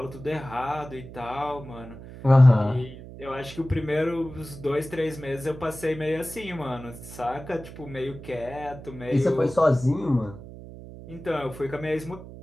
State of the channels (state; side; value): noise; right; hum, 14 dB below the sound